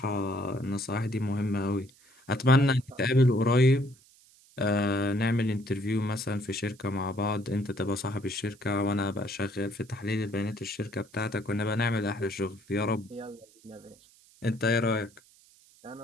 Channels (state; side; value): noise; right; hiss, 28 dB below the sound